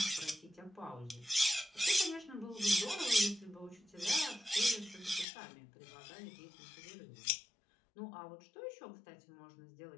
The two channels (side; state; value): right; drops out; at 5.2 s